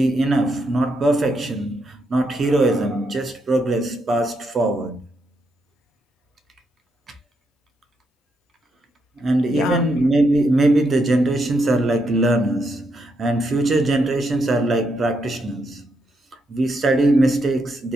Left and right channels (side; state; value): both; normal; correlation 0.80